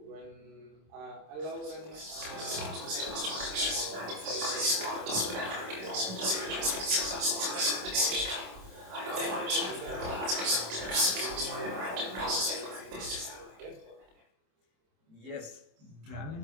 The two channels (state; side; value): late; left; 27 ms